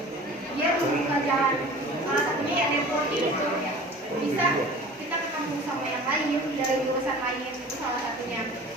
Dia membuka jalan. Salah satunya ya networking itu bisa kita ketemu sama yang lain dari jurusan lain, itu salah satunya.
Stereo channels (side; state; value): both; normal; correlation 0.42